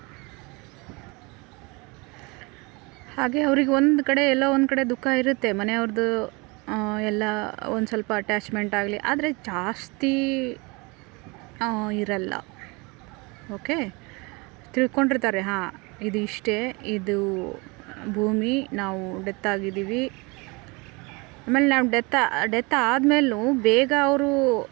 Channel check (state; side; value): quieter; left; 27.4 dB